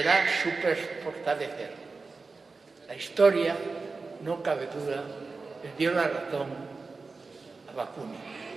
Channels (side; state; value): left; quieter; 4.1 dB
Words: superfortalecer. La historia, no cabe duda, le dio la razón a Bakunin.